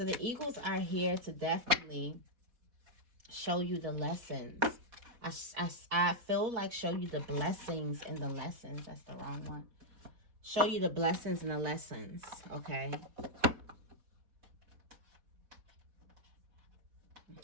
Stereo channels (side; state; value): left; late; 4.1 ms